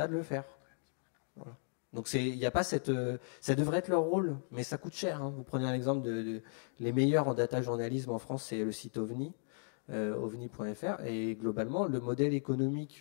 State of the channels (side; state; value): right; silent; 54 dB below the other